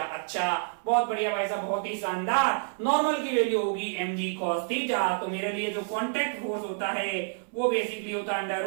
अच्छा, बहुत बढ़िया भाई साहब, बहुत ही शानदार। नॉर्मल की वैल्यू होगी mg cos थीटा। तो मेरे लिए जो कॉन्टैक्ट फोर्स होता है वो बेसिकली होता है under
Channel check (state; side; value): silent; left; 59 dB below the other